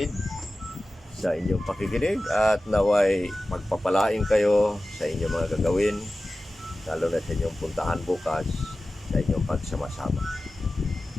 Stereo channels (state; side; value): normal; both; correlation 0.96